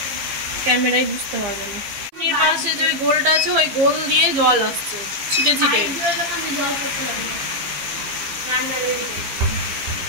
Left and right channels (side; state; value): left; late; 15 ms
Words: ক্যামেরায় বুঝতে পারবে না। পাশে যে ওই গোলটা আছে, ওই গোল দিয়ে জল আসছে ছিটে ছিটে,